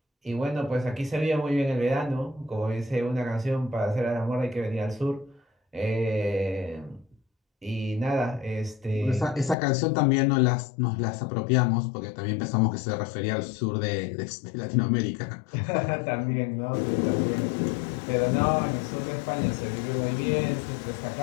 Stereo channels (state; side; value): drops out; right; at 9.6 s